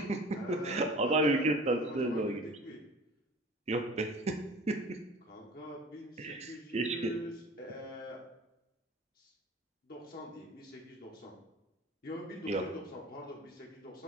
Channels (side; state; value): both; normal; correlation 0.43